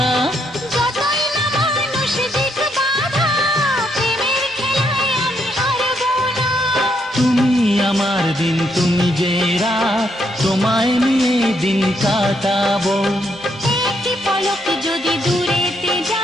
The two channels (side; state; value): both; normal; correlation 0.75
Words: যতই না মানুষ দিক বাধা, প্রেমের খেলায় আমি হারবো না। তুমি আমার দিন, তুমি যে রাত, তোমায় নিয়ে দিন কাটাবো। একটি পলক যদি দূরেতে